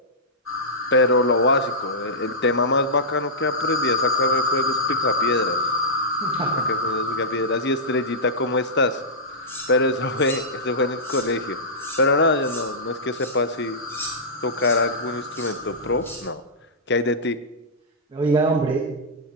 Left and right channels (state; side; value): normal; both; correlation -0.13